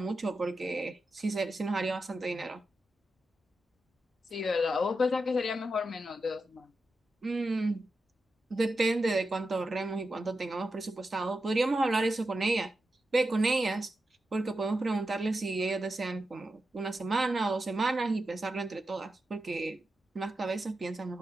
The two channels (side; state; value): both; normal; correlation 0.89